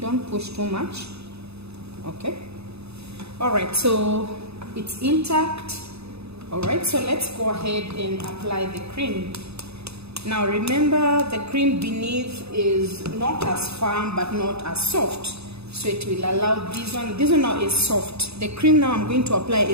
push too much. Okay. All right, so it's intact. All right, so let's go ahead and apply the cream. Now remember, the cream beneath is not as firm but not as soft, so it will allow this one now is soft. The cream now I'm going to apply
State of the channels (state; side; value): late; left; 0.79 ms